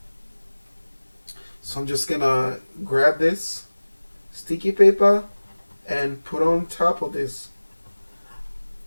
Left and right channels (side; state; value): both; inverted; correlation -1.00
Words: So I'm just going to grab this sticky paper and put on top of this.